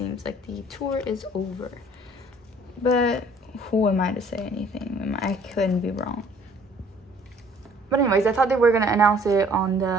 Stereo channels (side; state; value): both; normal; correlation 0.56